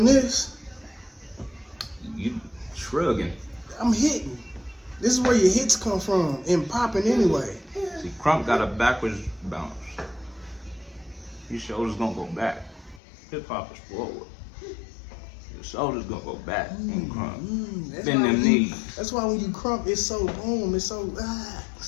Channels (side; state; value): right; drops out; at 13.0 s